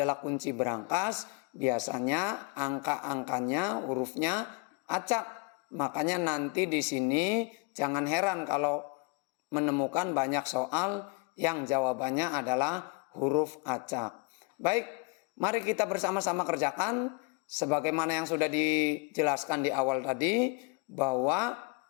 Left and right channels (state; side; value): quieter; right; 31.2 dB